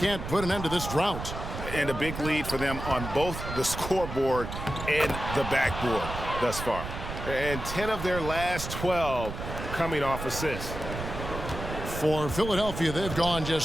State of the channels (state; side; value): noise; right; rumble, 7 dB below the sound